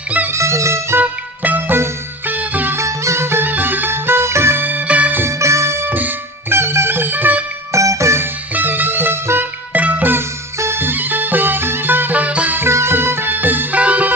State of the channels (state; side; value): normal; both; correlation 0.31